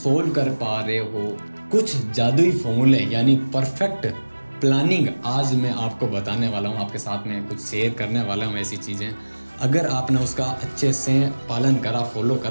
कर पा रहे हो। कुछ जादुई फॉर्मूले यानी परफेक्ट प्लानिंग आज मैं आपको बताने वाला हूँ, आपके साथ में कुछ शेयर करने वाला हूँ। ऐसी चीज़ें अगर आपने उसका अच्छे से पालन करा, फॉलो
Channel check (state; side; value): inverted; both; correlation -1.00